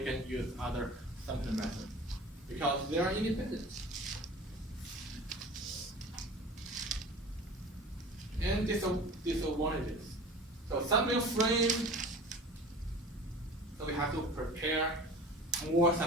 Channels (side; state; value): both; normal; correlation 0.39